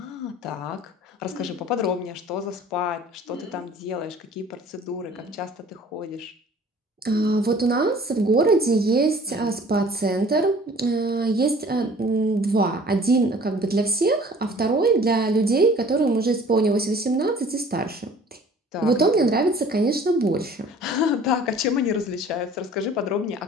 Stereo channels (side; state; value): both; normal; correlation 0.50